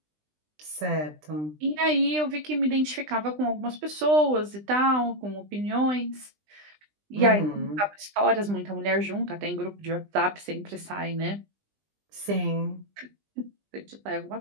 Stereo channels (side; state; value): left; late; 20 ms